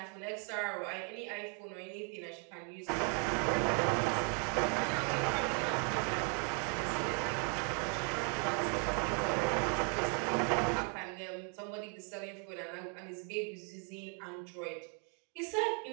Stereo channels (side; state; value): left; quieter; 33.3 dB